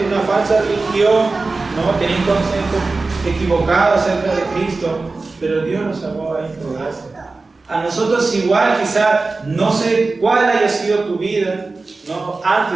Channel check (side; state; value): left; quieter; 3.7 dB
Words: de una falsa religión, ¿no? Tenía un concepto equivocado acerca de Cristo, pero Dios nos salvó a él por gracia. A nosotros igual, quizá, no sé cuál haya sido tu vida, ¿no?